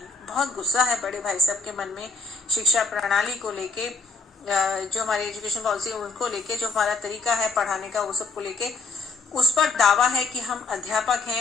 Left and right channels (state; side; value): quieter; right; 4.3 dB